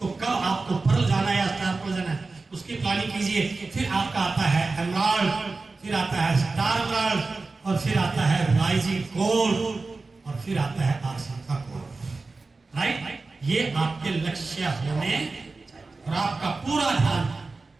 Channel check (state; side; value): quieter; left; 3.7 dB